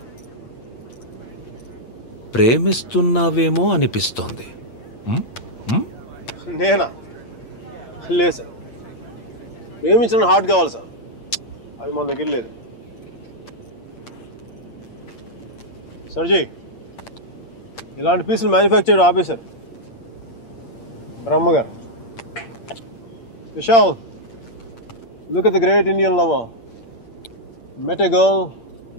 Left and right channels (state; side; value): late; right; 8.7 ms